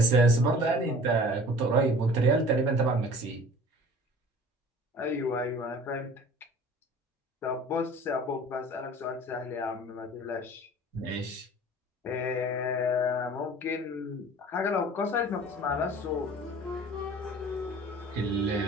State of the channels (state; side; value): normal; both; correlation 0.45